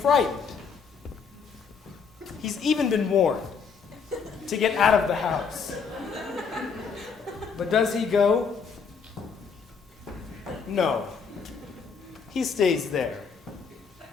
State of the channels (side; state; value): right; quieter; 5.8 dB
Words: He's even been warned to get out of the house. But does he go? No. He stays there.